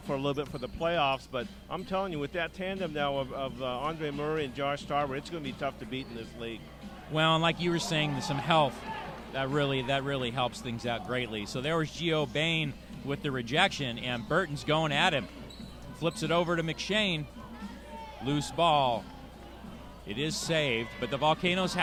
for a little bit for the playoffs, but I'm telling you, with that tandem now of Andre Murray and Josh Tarver, it's going to be tough to beat in this league. Well, and like you were saying, some health that really helps things out greatly. So there was Gio Bain with the rejection, and Burton's going at him. Flips it over to McShane. Loose ball. It is saved, but the Volcanoes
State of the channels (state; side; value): identical; both; correlation 1.00